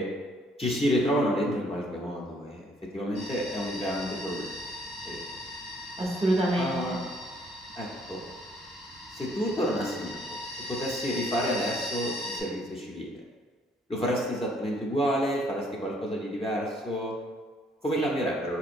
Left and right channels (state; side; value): normal; both; correlation 0.65